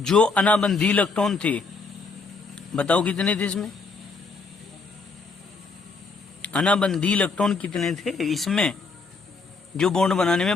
अनाबंधी इलेक्ट्रॉन थे, बताओ कितने थे इसमें? अनाबंधी इलेक्ट्रॉन कितने थे इसमें जो बॉन्ड बनाने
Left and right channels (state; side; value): quieter; right; 4.2 dB